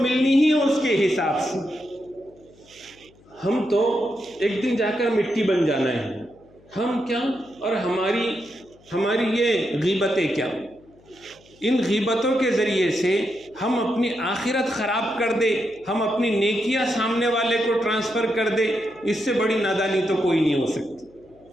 ہی ہے اس کے حساب سے۔ ہم تو ایک دن جا کر مٹی بن جانا ہے، ہم کیا اور ہماری یہ غیبتیں کیا۔ ان غیبتوں کے ذریعے سے ہم اپنی آخرت خراب کر دے، ہم اپنی نیکیاں سامنے والے کو ٹرانسفر کر دے، اس سے بڑی نادانی تو کوئی نہیں ہو سکتی۔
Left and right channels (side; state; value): left; noise; hum, 28 dB below the sound